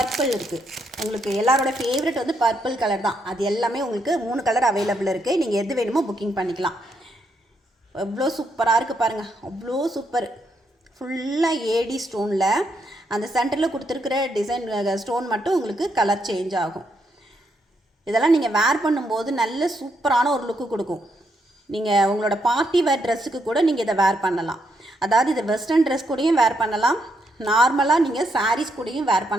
இருக்குது. உங்களுக்கு எல்லாரோட ஃபேவரட் வந்து பர்பிள் கலர் தான். அது எல்லாமே உங்களுக்கு 3 கலர் அவைலபிள் இருக்குது. நீங்கள் எது வேணுமோ புக்கிங் பண்ணிக்கலாம். எவ்வளோ சூப்பராக இருக்குது பாருங்கள், அவ்வளோ சூப்பர். ஃபுல்லாக ஏடி ஸ்டோனில் அந்த சென்டரில் கொடுத்துருக்கிற டிசைன் ஸ்டோன் மட்டும் உங்களுக்கு கலர் சேஞ்ச் ஆகும். இதெல்லாம் நீங்கள் வேர் பண்ணும்போது நல்ல சூப்பரான ஒரு லுக்கு கொடுக்கும். நீங்கள் உங்களோட பார்ட்டி வேர் ட்ரெஸ்ஸுக்கு கூட நீங்கள் இதை வேர் பண்ணலாம். அதாவது இதை வெஸ்டர்ன் ட்ரெஸ் கூடயும் வேர் பண்ணலாம், நார்மலாக நீங்கள் சாரீஸ் கூடயும் வேர்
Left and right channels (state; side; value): normal; both; correlation 0.78